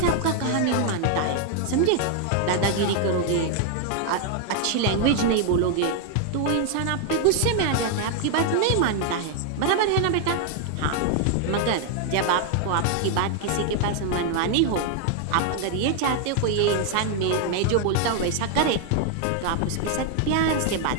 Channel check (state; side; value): different; both; correlation 0.00